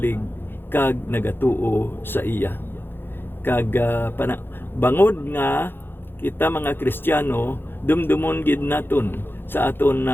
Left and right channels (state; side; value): late; right; 0.10 ms